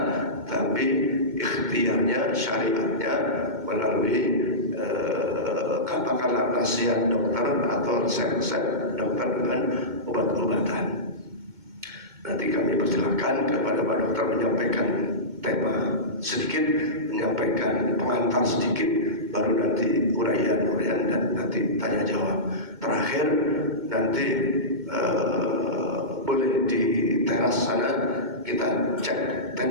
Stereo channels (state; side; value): late; left; 2.1 ms